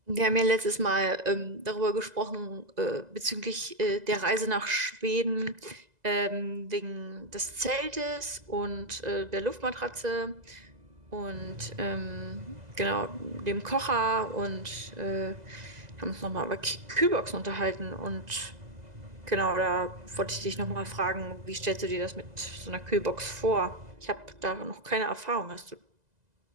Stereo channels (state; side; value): late; left; 2.0 ms